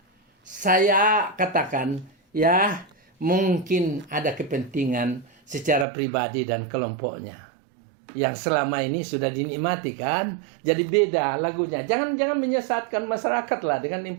saya katakan ya mungkin ada kepentingan secara pribadi dan kelompoknya yang selama ini sudah dinikmati kan. Jadi beda lagunya. Jangan menyesatkan masyarakat lah dengan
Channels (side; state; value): left; drops out; at 5.9 s